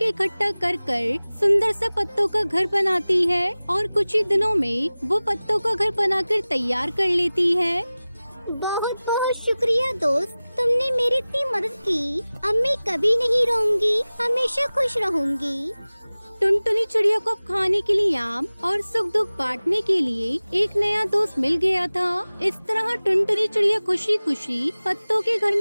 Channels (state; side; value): inverted; both; correlation -0.98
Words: इकट्ठा कर कर सुंदर सा पत्तों का घर बनाती है और कुछ ही दिनों में वो पत्तों का घर बनाकर तैयार कर लेती है। बहुत बहुत शुक्रिया दोस्त, तुमने मेरी इतनी मदद की। अब मैं कभी नहीं रोऊंगी, हमेशा खुश रहूंगी। टुनटुनी चिड़िया को अब खाने के लिए आम और सुख दुख बांटने के लिए एक नया दोस्त मिल गया था। इस तरह टुनटुनी चिड़िया खुशी खुशी पत्तों के घर